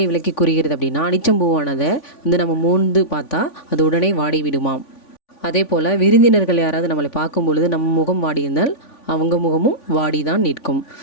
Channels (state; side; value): late; right; 3.5 ms